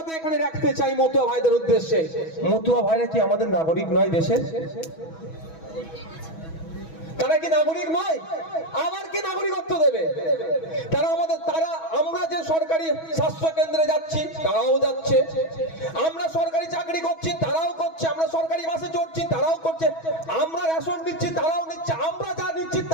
এখানে রাখতে চাই মতুয়া ভাইদের উদ্দেশ্যে, মতুয়া ভাইরা কি আমাদের নাগরিক নয় দেশের? তারা কি নাগরিক নয়? আবার কি নাগরিকত্ব দেবে? আমরা যে সরকারি স্বাস্থ্য কেন্দ্রে যাচ্ছি তারাও যাচ্ছে, আমরা সরকারি চাকরি করছি তারাও করছে, আমরা সরকারি বাসে চড়ছি তারাও করছে, আমরা রেশন নিচ্ছি তারাও নিচ্ছে, আমরা যা নিচ্ছি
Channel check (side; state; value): right; late; 6.2 ms